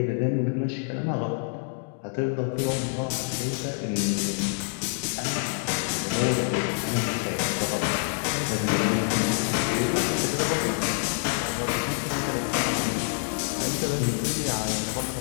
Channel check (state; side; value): silent; right; 58 dB below the other